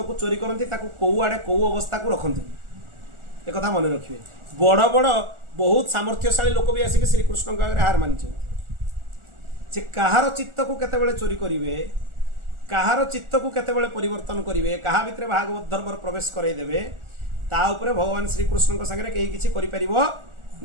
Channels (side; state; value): left; late; 1.4 ms